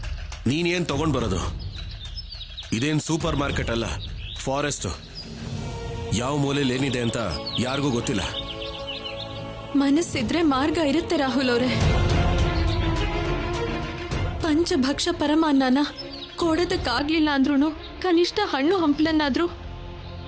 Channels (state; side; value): identical; both; correlation 1.00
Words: ನೀನೇನ್ ತಗೊಂಡ್ ಬರೋದು? ಇದೇನ್ ಸೂಪರ್ ಮಾರ್ಕೆಟ್ ಅಲ್ಲ, ಫಾರೆಸ್ಟ್. ಯಾವ ಮೂಲೆಯಲ್ಲಿ ಏನಿದೆ ಅಂತ ಯಾರಿಗೂ ಗೊತ್ತಿಲ್ಲ. ಮನಸ್ಸಿದ್ರೆ ಮಾರ್ಗ ಇರುತ್ತೆ ರಾಹುಲ್ ಅವರೇ. ಪಂಚಭಕ್ಷ ಪರಮಾನ್ನನ ಕೊಡೋದಕ್ಕಾಗ್ಲಿಲ್ಲ ಅಂದ್ರೂ ಕನಿಷ್ಠ ಹಣ್ಣು ಹಂಪ್ಲನ್ನಾದ್ರೂ